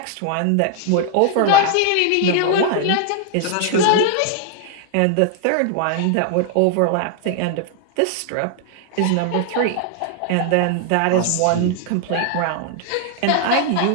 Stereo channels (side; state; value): both; different; correlation 0.00